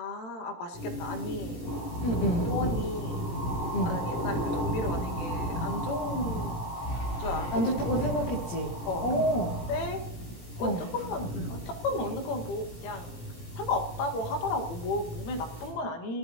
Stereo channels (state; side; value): late; right; 17 ms